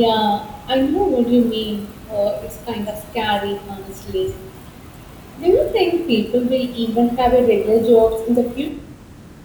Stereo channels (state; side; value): identical; both; correlation 1.00